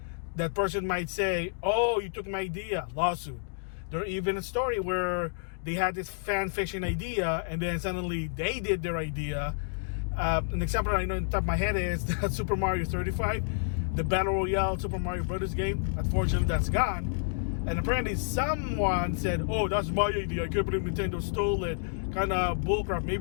that person might say, oh, you took my idea, lawsuit. There's even a story where they had this fan fiction idea and then suddenly they did their idea. An example I know in the top of my head is that Super Mario 35, the Battle Royale Super Mario Brothers game. Unfortunately, that's gone. And apparently someone said, oh, that's my idea, I can't believe Nintendo stole it. Kind of bullcrap.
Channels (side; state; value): right; silent; digital silence